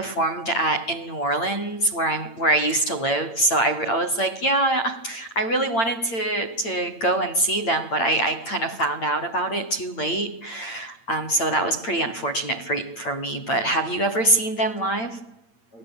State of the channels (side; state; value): right; late; 8.8 ms